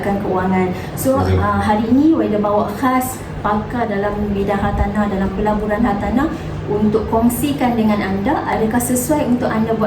keuangan. So hari ini Waida bawa khas pakar dalam bidang hartanah, dalam pelaburan hartanah, untuk kongsikan dengan anda adakah sesuai untuk anda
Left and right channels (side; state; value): both; identical; correlation 1.00